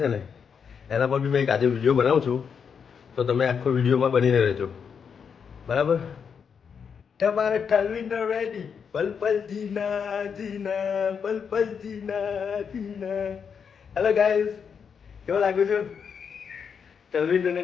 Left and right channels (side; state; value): right; quieter; 6.7 dB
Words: છે ને એના પર બી મેં એક આજે વિડીયો બનાવું છું, તો તમે આખો વિડીયોમાં બનીને રહેજો બરાબર. તમારે તલવિંદર રેડી, પલ પલ જીના જીના, પલ પલ જીના જીના. હેલો ગાઈસ, કેવો લાગુ છું? તલવિંદરને